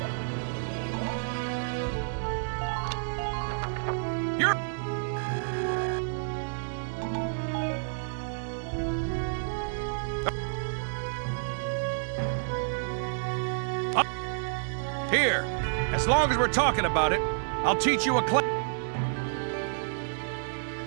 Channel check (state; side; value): silent; left; digital silence